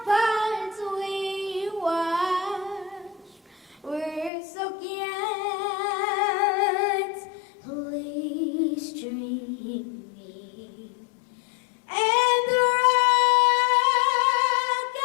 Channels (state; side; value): drops out; right; at 4.3 s